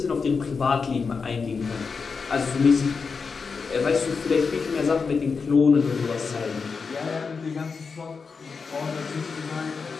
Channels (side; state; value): right; quieter; 5.1 dB